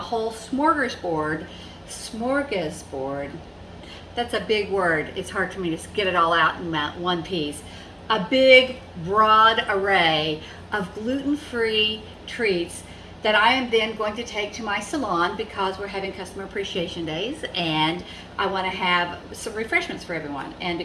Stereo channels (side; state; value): both; identical; correlation 1.00